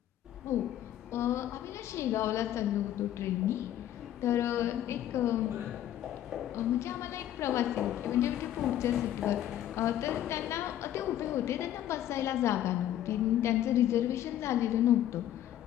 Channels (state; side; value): quieter; right; 12.0 dB